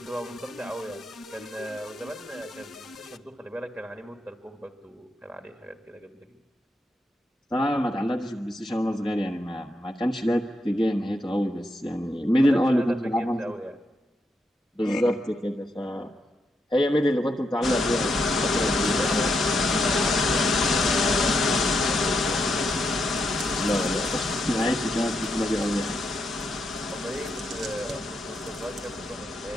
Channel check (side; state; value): both; normal; correlation 0.81